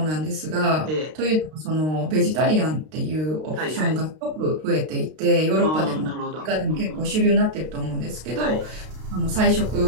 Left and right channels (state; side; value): late; left; 32 ms